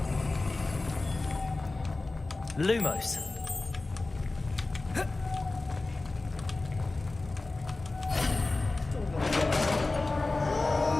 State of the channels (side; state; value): right; quieter; 3.3 dB